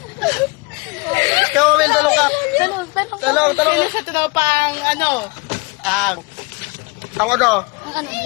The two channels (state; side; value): quieter; right; 26.7 dB